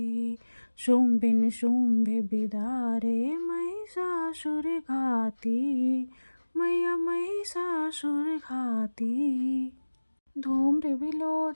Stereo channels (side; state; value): both; inverted; correlation -1.00